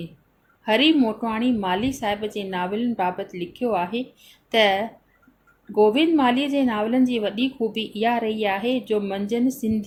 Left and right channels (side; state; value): both; identical; correlation 1.00